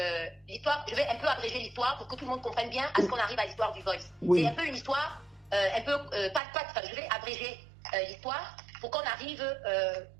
l'histoire, je vais un peu abréger l'histoire pour que tout le monde comprenne bien à ce qu'on arrive à l'histoire du voice. Oui. C'est un peu une histoire, je vais abréger l'histoire pour qu'on arrive,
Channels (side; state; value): left; drops out; at 6.4 s